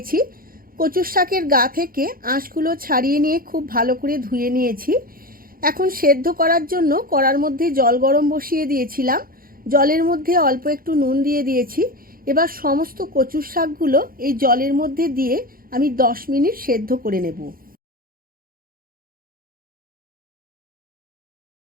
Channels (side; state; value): left; late; 0.42 ms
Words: কচুর শাকের গা থেকে আঁশগুলো ছাড়িয়ে নিয়ে খুব ভালো করে ধুয়ে নিয়েছি। এখন সেদ্ধ করার জন্য কড়ার মধ্যে জল গরম বসিয়ে দিয়েছিলাম। জলের মধ্যে অল্প একটু নুন দিয়ে দিয়েছি। এবার সমস্ত কচুর শাকগুলো এই জলের মধ্যে দিয়ে আমি 10 মিনিট সেদ্ধ করে নেব।